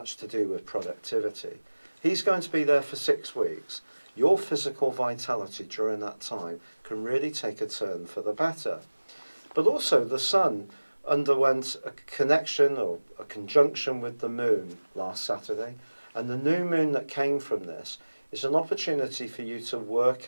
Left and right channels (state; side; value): inverted; both; correlation -1.00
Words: to do with productivity. He's going to be there for 6 weeks. Your physical vitality during that time can really take a turn for the better. But also the Sun underwent a connection or a conjunction with the Moon last Saturday, and the new moon that came from this is an opportunity for you to